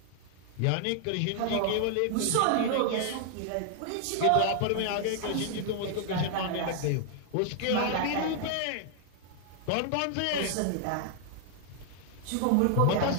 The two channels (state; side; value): different; both; correlation 0.00